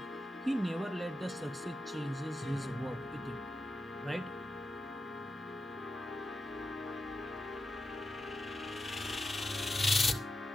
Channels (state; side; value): normal; both; correlation 0.89